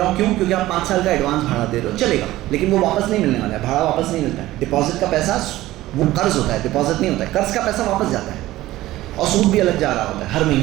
ہوں. کیوں؟ کیونکہ آپ 5 سال کا ایڈوانس بھاڑا دے رہے ہو، چلے گا. لیکن وہ واپس نہیں ملنے والا ہے، بھاڑا واپس نہیں ملتا ہے. ڈپازٹ کا پیسہ وہ قرض ہوتا ہے، ڈپازٹ نہیں ہوتا ہے. قرض کا پیسہ واپس جاتا ہے اور سود بھی الگ جا رہا ہوتا ہے ہر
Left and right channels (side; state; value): left; quieter; 16.3 dB